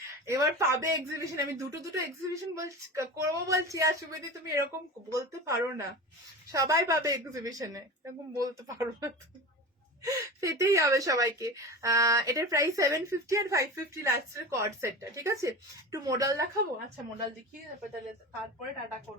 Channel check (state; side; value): normal; both; correlation 0.30